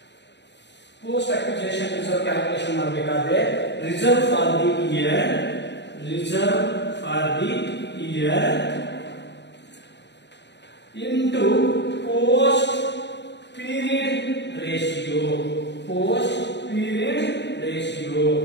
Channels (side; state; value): right; late; 0.51 ms